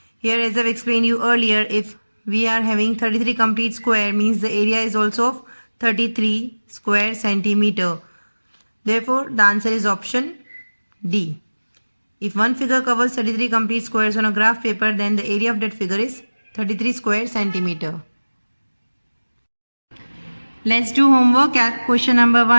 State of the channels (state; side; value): inverted; both; correlation -1.00